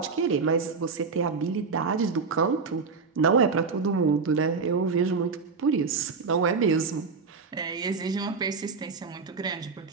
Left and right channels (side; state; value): left; quieter; 4.9 dB